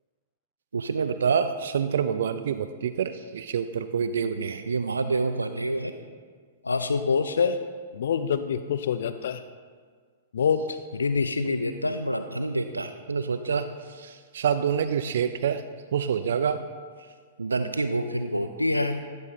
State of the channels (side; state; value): both; inverted; correlation -0.69